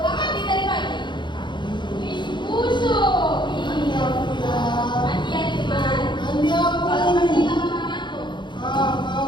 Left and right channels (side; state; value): right; late; 0.22 ms